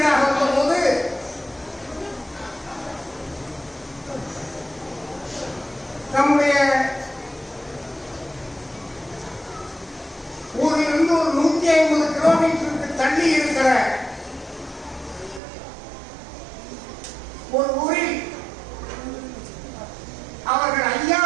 வந்தபோது நம்முடைய ஊரிலிருந்து ஒரு 150 கிலோமீட்டருக்கு தள்ளி இருக்கிற ஒரு ஊரில் அவர்கள்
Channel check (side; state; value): left; drops out; at 15.4 s